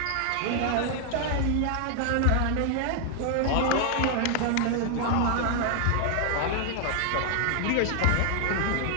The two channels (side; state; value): both; different; correlation 0.00